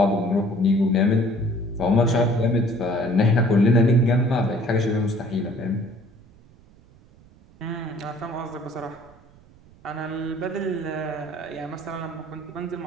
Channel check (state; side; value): noise; right; rumble, 27 dB below the sound